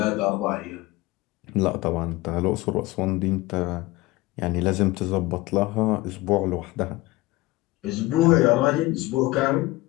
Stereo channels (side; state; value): right; quieter; 19.9 dB